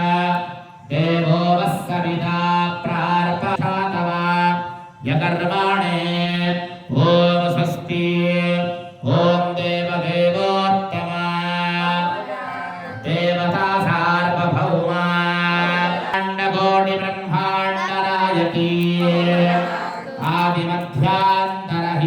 దేవో వస్సవితా ప్రార్పణాతవ యకర్మాణే ఓం స్వస్తి ఓం దేవదేవోత్తమ దేవతా సార్వభౌమ అండకోటి బ్రహ్మాండ నాయకీ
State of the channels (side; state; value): both; identical; correlation 1.00